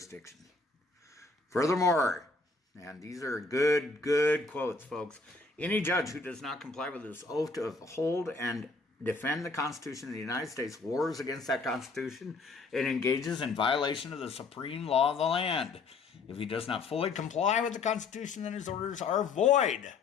Furthermore, and these are good quotes, folks, any judge who does not comply with this oath to uphold and defend the Constitution of the United States wars against that Constitution and engages in violation of the supreme law of the land. If he does not fully comply with the Constitution, then his orders are void.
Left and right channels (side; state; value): right; quieter; 3.9 dB